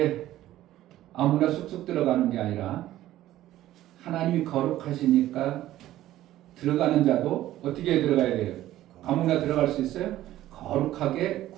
아무나 쑥쑥 들어가는 게 아니라 하나님이 거룩하시니까 들어가는 자도 어떻게 들어가야 돼요? 아무나 들어갈 수 있어요? 거룩하게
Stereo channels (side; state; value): left; quieter; 14.2 dB